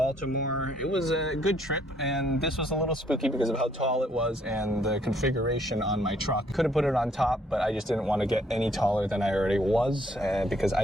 It was a good trip, and this was a little spooky because of how tall it was and the configuration on my truck. Could have put it on top, but I just didn't want to get any taller than I already was because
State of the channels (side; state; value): both; normal; correlation 0.66